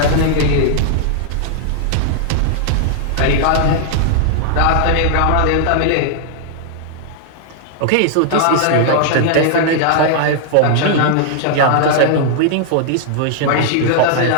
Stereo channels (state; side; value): different; both; correlation -0.01